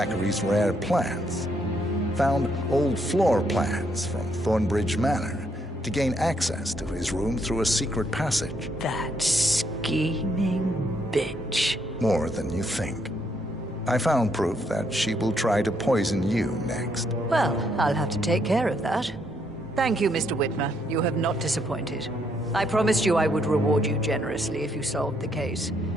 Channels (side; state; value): both; normal; correlation 0.73